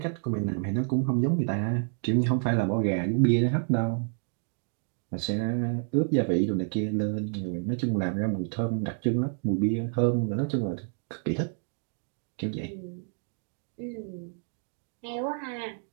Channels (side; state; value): left; silent; 58 dB below the other